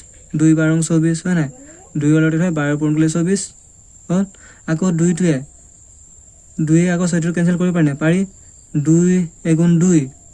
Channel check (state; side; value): identical; both; correlation 1.00